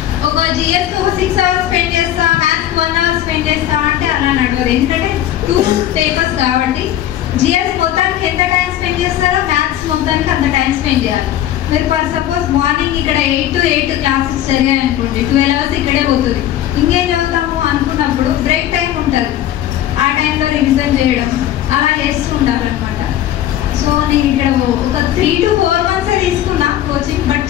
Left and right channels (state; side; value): quieter; right; 12.2 dB